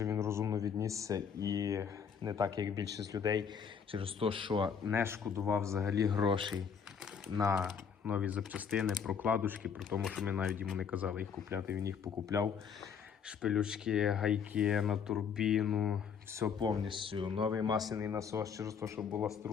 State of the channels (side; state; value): right; quieter; 6.9 dB